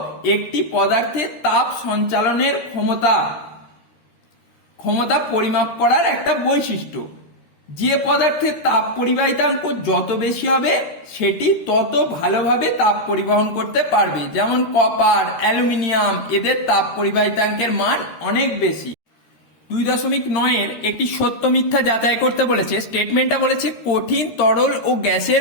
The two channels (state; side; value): late; right; 13 ms